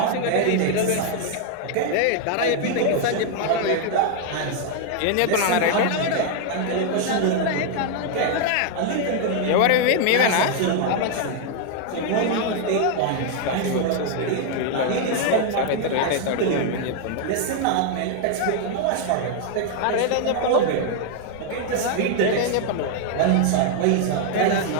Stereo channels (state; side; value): different; both; correlation 0.00